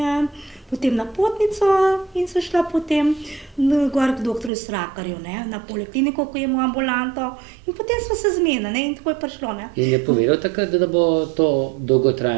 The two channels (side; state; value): left; drops out; at 4.5 s